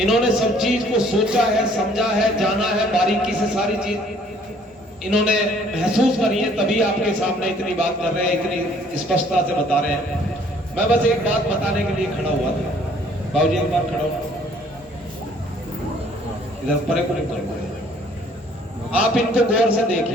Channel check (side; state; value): both; normal; correlation 0.59